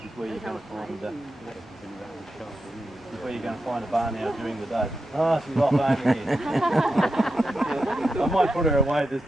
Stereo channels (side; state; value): both; normal; correlation 0.88